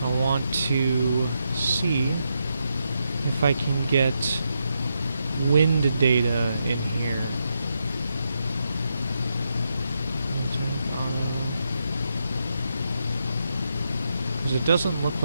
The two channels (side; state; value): both; inverted; correlation -0.83